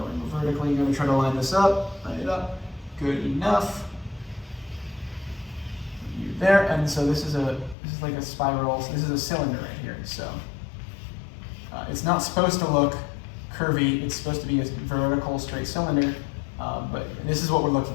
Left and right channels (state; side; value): drops out; right; at 7.8 s